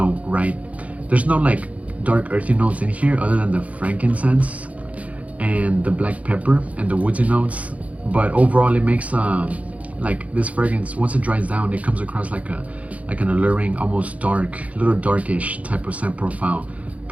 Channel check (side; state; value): left; late; 0.067 ms